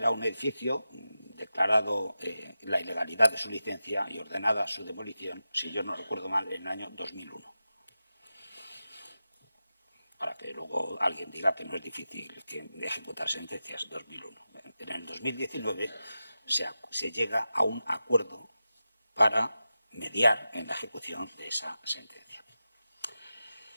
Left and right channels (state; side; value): inverted; both; correlation -0.92